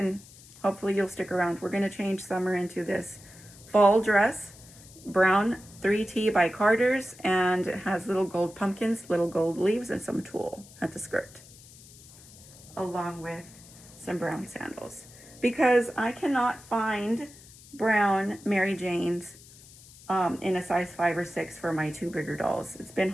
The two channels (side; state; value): left; noise; hiss, 21 dB below the sound